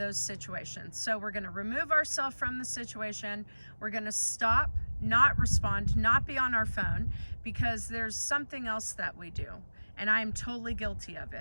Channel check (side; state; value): both; inverted; correlation -1.00